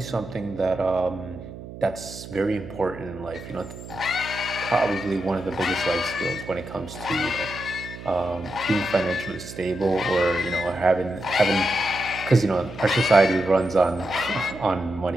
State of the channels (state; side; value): noise; right; hum, 13 dB below the sound